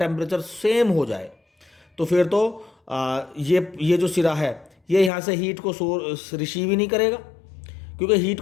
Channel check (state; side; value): drops out; right; at 5.1 s